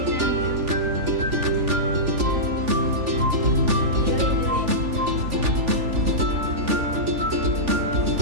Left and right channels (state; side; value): late; left; 3.4 ms